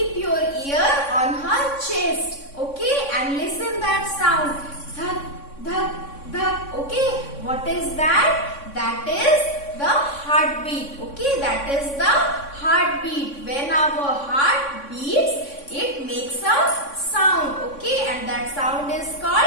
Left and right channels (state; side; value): late; right; 3.6 ms